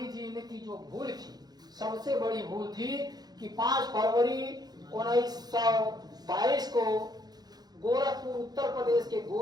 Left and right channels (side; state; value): left; late; 0.19 ms